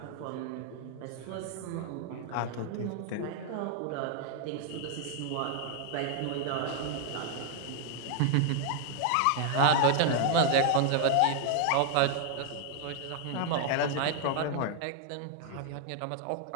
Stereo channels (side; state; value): both; different; correlation 0.00